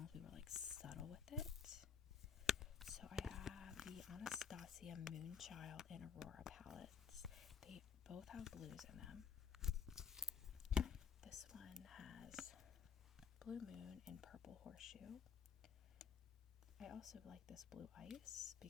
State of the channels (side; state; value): right; quieter; 6.7 dB